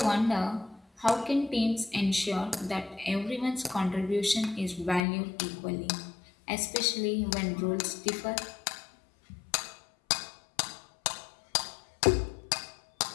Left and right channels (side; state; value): right; drops out; at 5.0 s